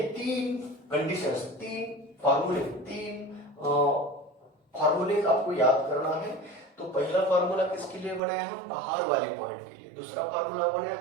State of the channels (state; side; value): drops out; left; at 8.2 s